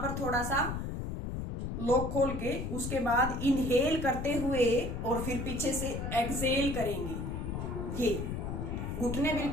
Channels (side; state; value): left; noise; rumble, 4 dB below the sound